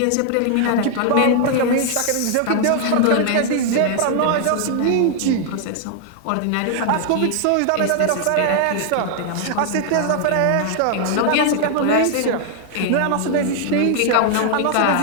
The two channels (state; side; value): different; both; correlation 0.00